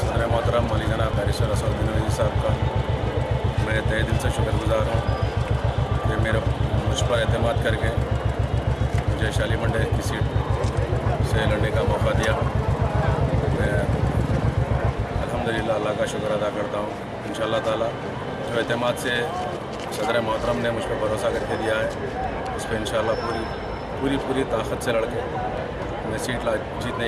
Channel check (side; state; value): both; identical; correlation 1.00